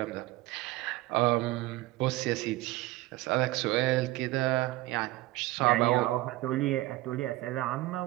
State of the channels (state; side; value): quieter; left; 18.4 dB